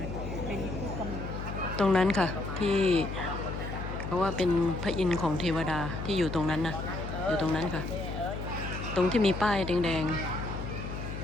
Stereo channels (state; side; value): noise; left; hum, 6 dB below the sound